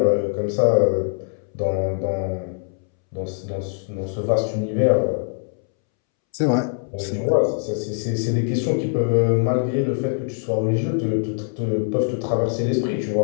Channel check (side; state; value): right; silent; 64 dB below the other